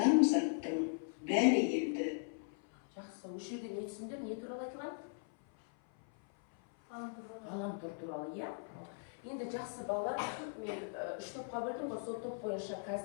бәрі енді. Жақсы, осы жерде не түсіндір, не туралы айтылған? Ғаламтор туралы, иә. Енді жақсы балалар, мен 3 топқа бөлдім ғой, сол топ бойынша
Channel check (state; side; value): silent; right; 52 dB below the other